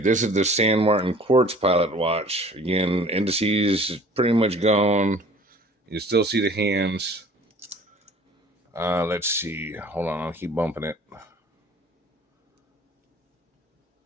this is the San Martin Quartz Pilot watch. Again, indices pretty much gone. You still see the hands. Let's see. Hold on, I'll keep bumping it.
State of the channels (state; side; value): normal; both; correlation 0.49